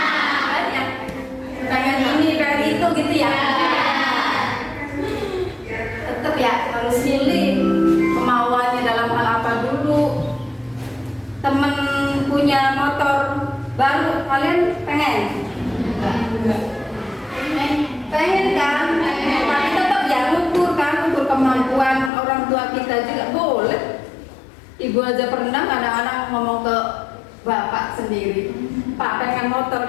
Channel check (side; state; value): right; drops out; at 22.1 s